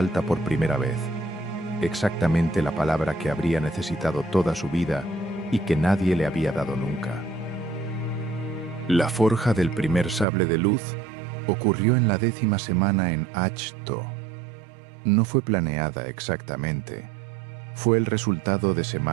por primera vez, exactamente la palabra que habría necesitado toda su vida y que nadie le había dado nunca. La forja del primer sable de luz ocurrió en la 10ª semana en Ahch-To. No fue planeada exactamente. Fue el resultado de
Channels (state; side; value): drops out; left; at 10.2 s